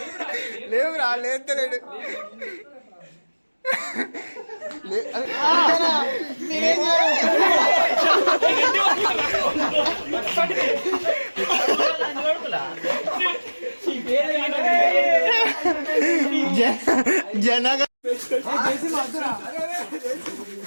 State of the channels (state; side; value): inverted; both; correlation -1.00